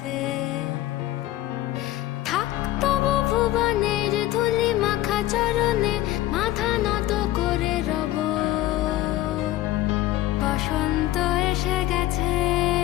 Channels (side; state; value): right; quieter; 15.3 dB